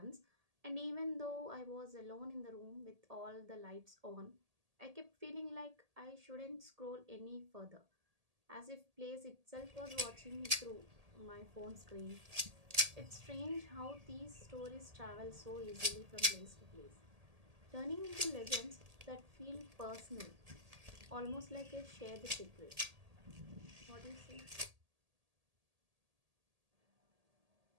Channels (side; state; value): left; late; 1.8 ms